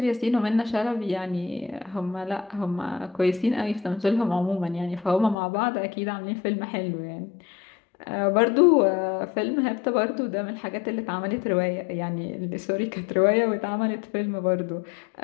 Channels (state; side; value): drops out; right; at 5.4 s